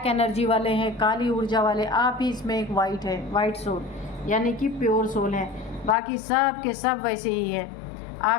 एनर्जी वाले हैं, काली ऊर्जा वाले। आप ही इसमें एक वाइट है, वाइट सोल यानी कि प्योर सोल है, बाकी सब के सब वैसे ही है।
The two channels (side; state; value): right; drops out; at 6.0 s